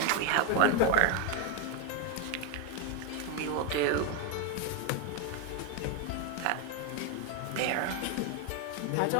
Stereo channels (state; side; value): different; both; correlation 0.01